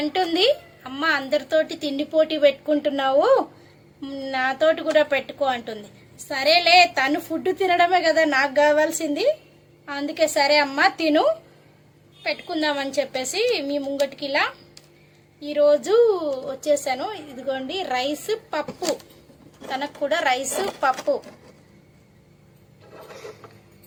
అమ్మ అందరితోటి తిండి పోటీ పెట్టుకుంటున్నావు, నాతోటి కూడా పెట్టుకో అంటుంది. సరేలే, తను ఫుడ్ తినడమే కదా నాకు కావాల్సింది, అందుకే సరే అమ్మ తిను, పెట్టుకుందామని చెప్పేసి మీ ముంగటికి ఇలా ఈరోజు వచ్చేసాను. ఇదిగోండి రైస్ పప్పు, తనకు కూడా రైస్ పప్పు.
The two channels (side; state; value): both; identical; correlation 1.00